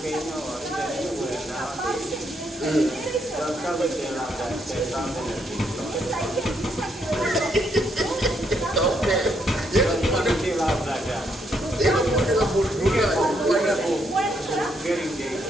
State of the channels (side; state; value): both; normal; correlation 0.75